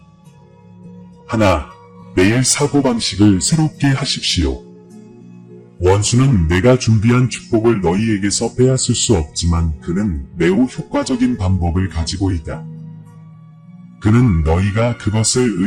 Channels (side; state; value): both; identical; correlation 1.00